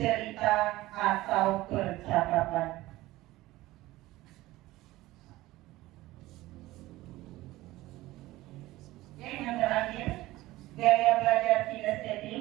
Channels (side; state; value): left; quieter; 17.8 dB